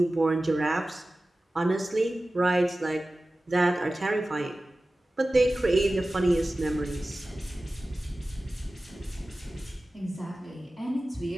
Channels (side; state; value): both; normal; correlation 0.96